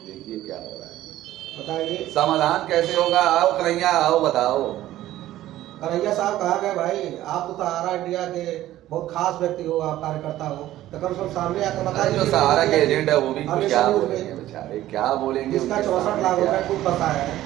देखिए क्या हो रहा है, बताइए समाधान कैसे होगा। आओ कन्हैया आओ बताओ। कन्हैया साहब कहा गया भाई आप तो सहारा इंडिया के बहुत खास व्यक्ति हो, आप कार्यकर्ता हो, तो कम से कम सामने आकर बताइए। जो सहारा के एजेंट है वो भी कुछ क्या बोलेंगे बेचारे, क्या बोलेंगे। जिसका 64 लाख रुपए खुद बताया है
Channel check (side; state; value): left; quieter; 14.3 dB